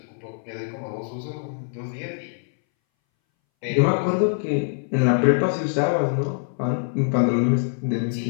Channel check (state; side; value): silent; right; 61 dB below the other